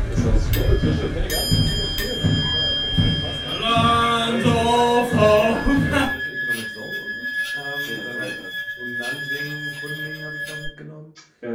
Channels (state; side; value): identical; both; correlation 1.00